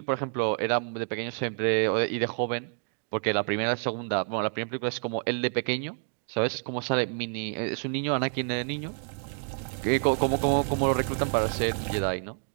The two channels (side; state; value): left; silent; 56 dB below the other